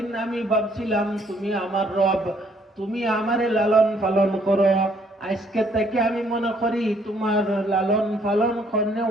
আমি ভাবছিলাম তুমি আমার রব, তুমি আমারে লালন পালন করো, আজকে থেকে আমি মনে করি তোমার লালন পালন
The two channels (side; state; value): both; normal; correlation 0.66